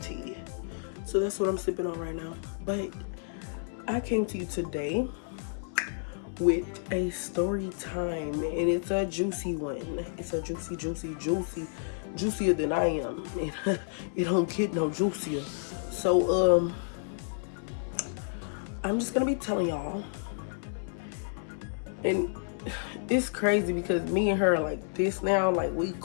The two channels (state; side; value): silent; right; 57 dB below the other